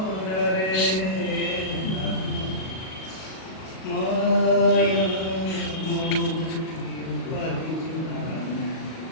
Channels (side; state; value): right; late; 37 ms